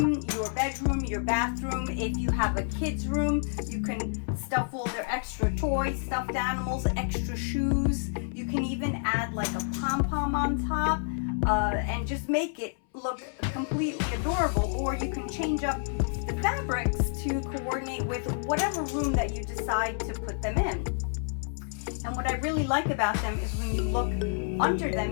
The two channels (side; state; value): right; silent; 59 dB below the other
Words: your bedroom, your bathroom. If you have a kid's room, you can stuff all their extra toys, stuffed animals, extra shoes. You can even add like a pom-pom on top and just make it look completely adorable. Or you can change up the fabrics to coordinate with whatever room that you decide to put them in. And what I really like about them is when you look under